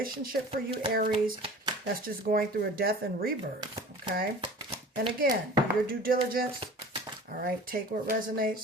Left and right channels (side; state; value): both; normal; correlation 0.41